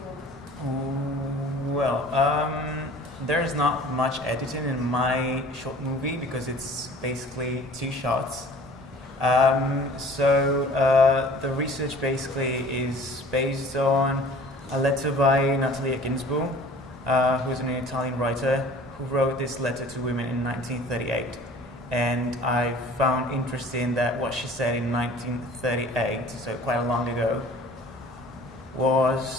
want. Well, there's not much editing in my short movie because it's basically 2 shots. The research basically is based on a letter by Natalia Ginzburg, who is an Italian writer who wrote this letter to women in 1938. And I found interesting that what she said in 1938, so quite long ago,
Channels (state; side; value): normal; both; correlation 0.47